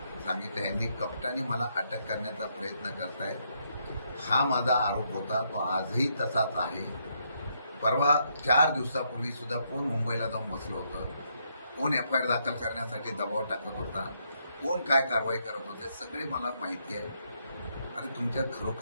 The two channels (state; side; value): inverted; both; correlation -0.76